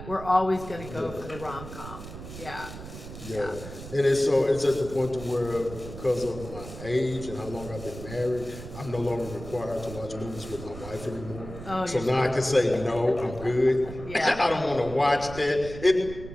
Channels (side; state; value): right; noise; rumble, 12 dB below the sound